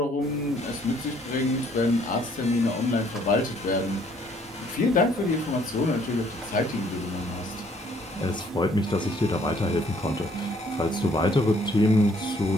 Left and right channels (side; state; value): both; normal; correlation 0.63